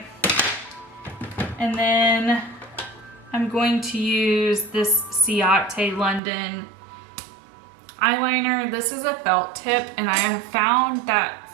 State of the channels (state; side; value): drops out; left; at 6.2 s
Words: And then I'm going to use this Ciate London eyeliner. This is a felt tip, and I have found